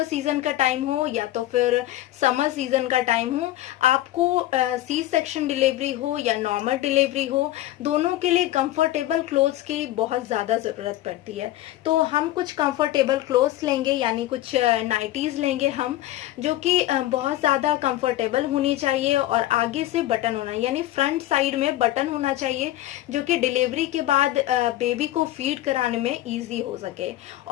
सीजन का टाइम हो या तो फिर समर सीजन का टाइम हो, आपको सी सेक्शन डिलीवरी हो या नॉर्मल डिलीवरी हो, दोनों के लिए कंफर्टेबल क्लोथ्स की बहुत ज्यादा जरूरत पड़ती है। तो हम कुछ कंफर्टेबल क्लोथ्स लेंगे, यानी कुछ नाइटीज लेंगे हम, जो कि बहुत ज्यादा कंफर्टेबल होनी चाहिए और आगे से बटन होना, यानी फ्रंट साइड में बटन होना चाहिए, जो कि डिलीवरी के बाद बेबी को फीड कराने में ईजी हो सके।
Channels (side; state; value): right; quieter; 15.0 dB